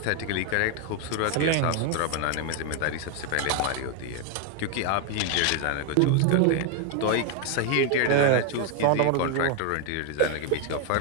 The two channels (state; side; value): different; both; correlation 0.01